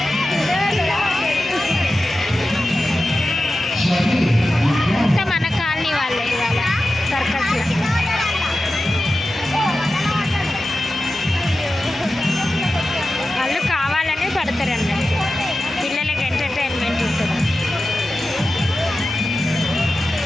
అంతా మన కాలనీ వాళ్ళే ఇవాళ సర్కస్. వాళ్ళు కావాలనే పడతారు అన్నట్టు, పిల్లలకి ఎంటర్టైన్మెంట్ ఉంటుంది.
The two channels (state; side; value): normal; both; correlation 0.93